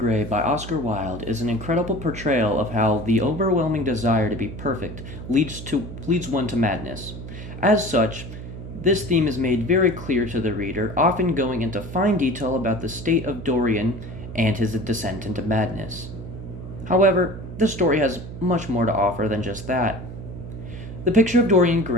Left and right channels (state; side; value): noise; right; hum, 11 dB below the sound